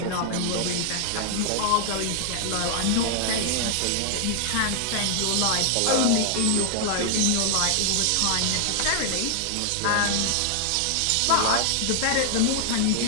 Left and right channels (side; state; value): both; different; correlation -0.01